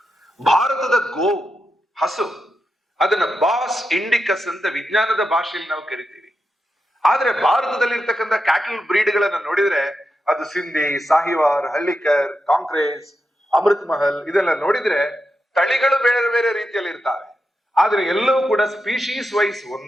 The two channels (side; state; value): both; normal; correlation 0.87